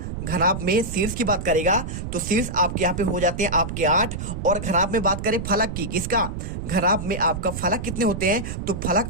घनाभ में शीर्ष की बात करेगा तो शीर्ष आपके यहाँ पे हो जाते हैं आपके 8। और घनाभ में बात करें फलक की, किसका, घनाभ में आपका फलक कितने होते हैं, तो फलक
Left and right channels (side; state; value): right; noise; rumble, 6 dB below the sound